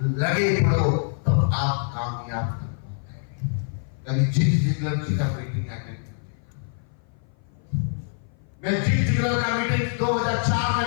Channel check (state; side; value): silent; right; 56 dB below the other